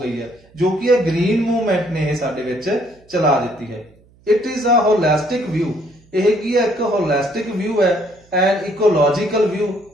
ਗਈ ਹੈ, ਜੋ ਕਿ ਇਹ ਗ੍ਰੀਨ ਮੂਵਮੈਂਟ ਨੇ ਇਹ ਸਾਡੇ ਵਿੱਚ ਚਲਾ ਦਿੱਤੀ ਹੈ. It is a holistic view. ਇਹ ਕੀ ਹੈ, ਇੱਕ ਹੋਲਿਸਟਿਕ ਵਿਊ ਹੈ. ਐਂਡ ਇਕੋਲੋਜੀਕਲ ਵਿਊ,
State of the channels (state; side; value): noise; right; hum, 30 dB below the sound